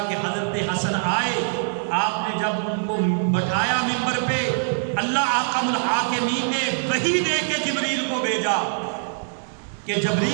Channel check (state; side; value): silent; left; digital silence